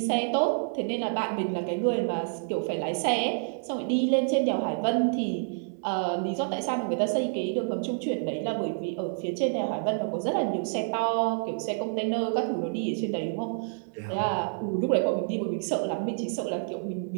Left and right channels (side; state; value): left; silent; digital silence